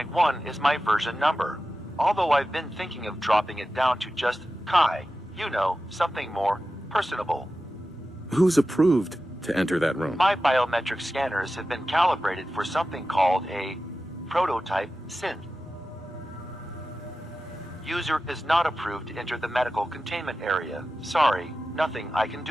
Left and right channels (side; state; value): both; normal; correlation 0.93